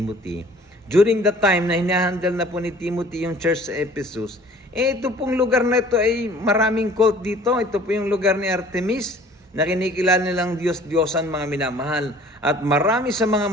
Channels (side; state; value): both; normal; correlation 0.50